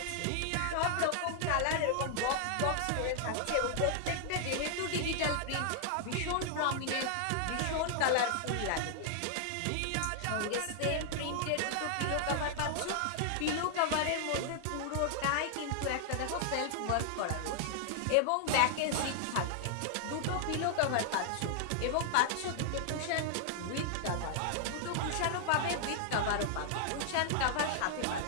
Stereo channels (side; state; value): both; different; correlation -0.01